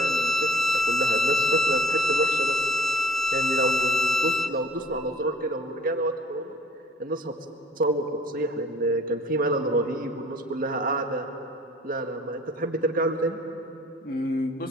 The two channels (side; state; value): both; normal; correlation 0.53